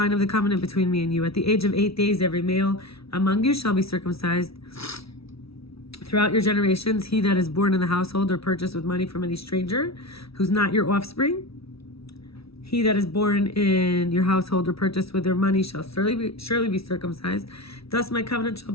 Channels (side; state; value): right; late; 0.76 ms